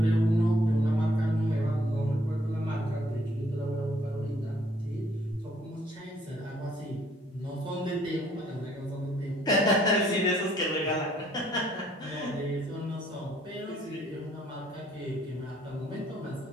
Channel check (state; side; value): normal; both; correlation 0.65